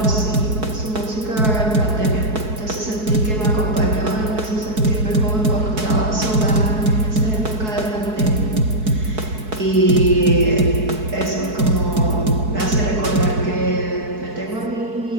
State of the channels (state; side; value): late; left; 4.6 ms